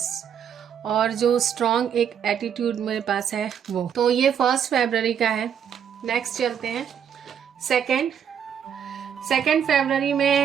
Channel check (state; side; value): quieter; left; 8.3 dB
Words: और जो स्ट्रॉन्ग एक एटीट्यूड मेरे पास है वो। तो ये 1 फरवरी का है। नेक्स्ट चलते हैं सेकेंड फरवरी